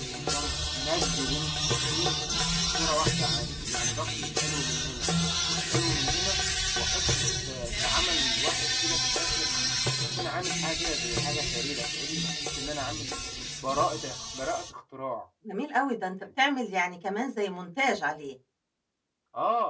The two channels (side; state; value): both; identical; correlation 1.00